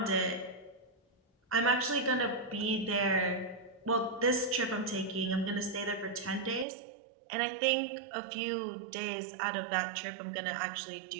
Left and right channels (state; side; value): drops out; left; at 6.7 s